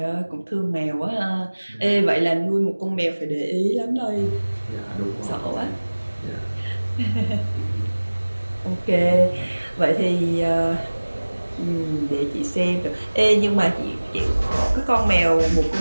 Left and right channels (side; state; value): both; inverted; correlation -1.00